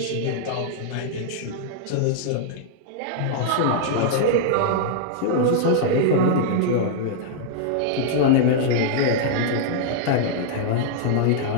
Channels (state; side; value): different; both; correlation -0.01